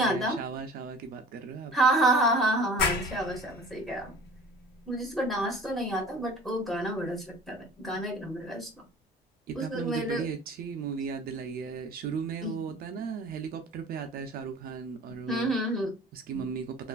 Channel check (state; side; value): normal; both; correlation 0.44